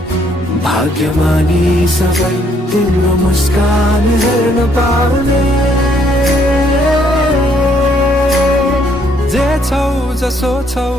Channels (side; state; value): both; normal; correlation 0.68